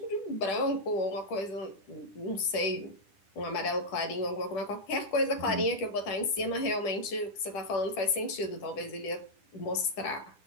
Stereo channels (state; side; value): late; right; 10 ms